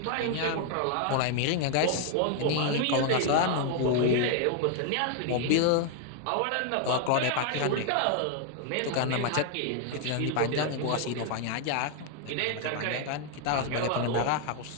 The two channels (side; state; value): both; different; correlation 0.00